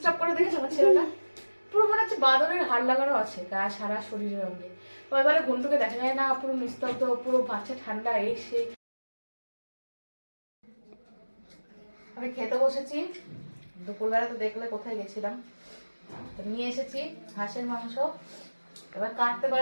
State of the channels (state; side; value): inverted; both; correlation -1.00